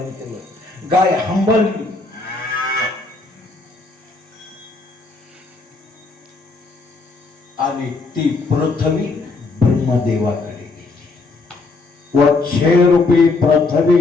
केलं. गाय हंबरली. आणि ती पृथ्वी ब्रह्मदेवाकडे गेली. वच्छे रूपी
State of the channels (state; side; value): quieter; right; 3.7 dB